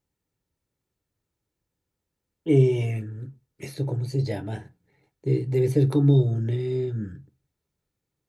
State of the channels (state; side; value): identical; both; correlation 1.00